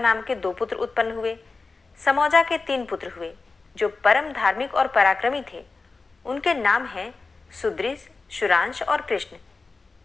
के 2 पुत्र उत्पन्न हुए। समौजा के 3 पुत्र हुए, जो परम धार्मिक और पराक्रमी थे। उनके नाम हैं सुदृश, शुरांश और कृष्ण।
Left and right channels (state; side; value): quieter; right; 4.0 dB